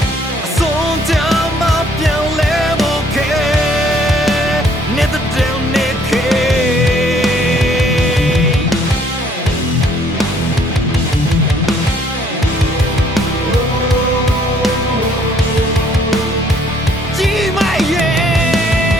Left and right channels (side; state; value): both; normal; correlation 0.62